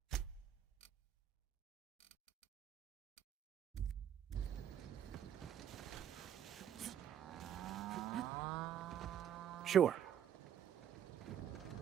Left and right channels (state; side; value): quieter; left; 9.6 dB